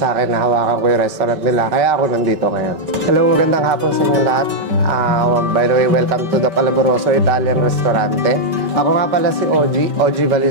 akin na hawakan ko yung restaurant nila. Kaya ako nandito ngayon. Hello, magandang hapon sa inyo lahat. By the way, welcome to the Flavoroso Italian Restaurante. Ako nga pala si OG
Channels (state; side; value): late; left; 5.2 ms